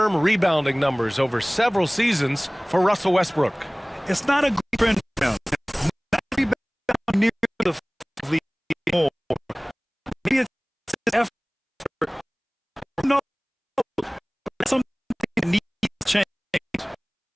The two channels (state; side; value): identical; both; correlation 1.00